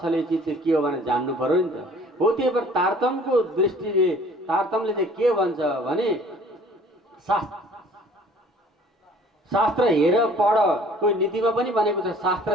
चिज चाहिँ के हो भनेर जान्नु पर्यो नि त। हो, त्यही भएर तारतम्यको दृष्टिले तारतम्यले चाहिँ के भन्छ भने शास्त्र हेर पढ, कोही नीतिमा पनि भनेको छ,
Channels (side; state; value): both; normal; correlation 0.53